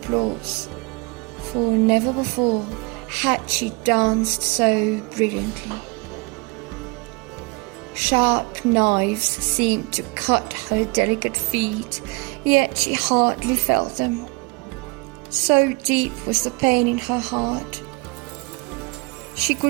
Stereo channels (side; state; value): left; quieter; 27.6 dB